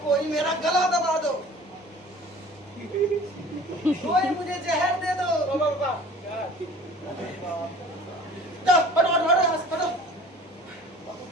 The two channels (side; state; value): both; normal; correlation 0.46